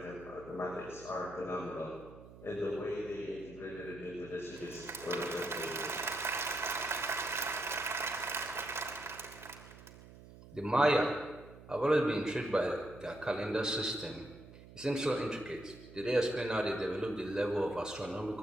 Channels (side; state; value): right; noise; hum, 18 dB below the sound